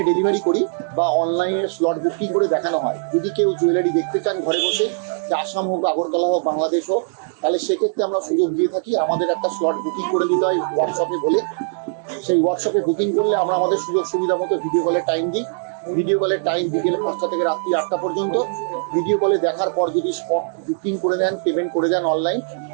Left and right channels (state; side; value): silent; left; digital silence